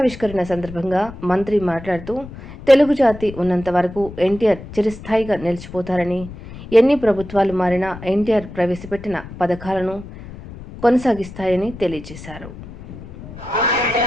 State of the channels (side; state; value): left; noise; rumble, 14 dB below the sound